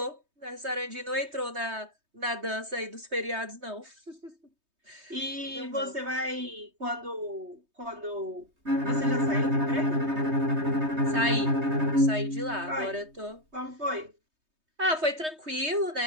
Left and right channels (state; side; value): late; left; 3.2 ms